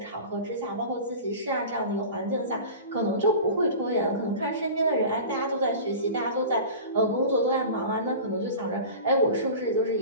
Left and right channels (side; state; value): both; inverted; correlation -0.35